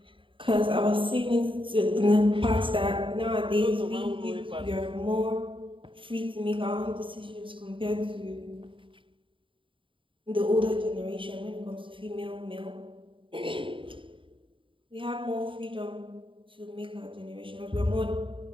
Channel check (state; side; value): late; left; 0.25 ms